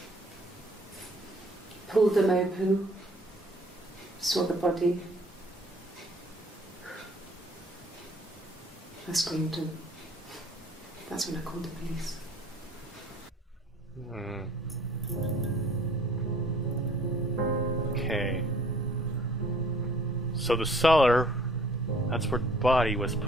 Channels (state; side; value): normal; both; correlation 0.56